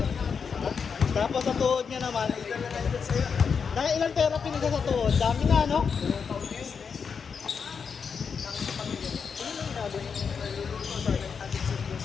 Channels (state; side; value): quieter; right; 6.1 dB